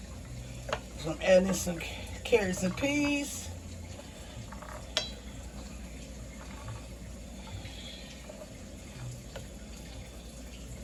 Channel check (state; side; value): identical; both; correlation 1.00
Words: So I'm adding some carrots and peas.